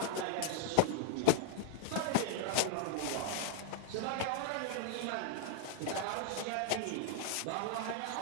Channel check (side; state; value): both; different; correlation -0.01